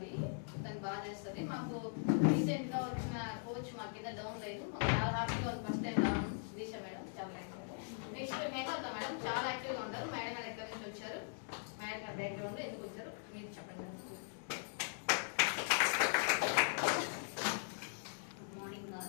తను బాగా చేస్తుంది. మాకు రీసెంట్ గా వచ్చిన కోచ్ మా కింద డౌన్ లేదు, చాలా హ్యాపీగా ఉంది. ఫస్ట్ టైం రావడం దిశ మేడం చాలా యాక్టివ్. నెక్స్ట్ మేఘాత మేడం చాలా యాక్టివ్ గా ఉంటారు. మేడం గారు ఎక్కడి నుంచి వచ్చారు, మేడం గారి బ్యాక్గ్రౌండ్ ఎందుకు వచ్చారు మీరు చెప్పండి. Good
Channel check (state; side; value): silent; right; digital silence